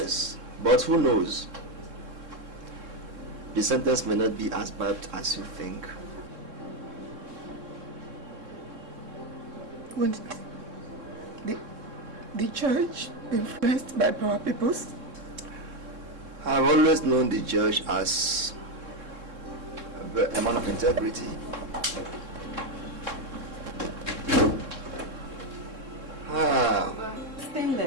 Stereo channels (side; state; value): left; late; 3.7 ms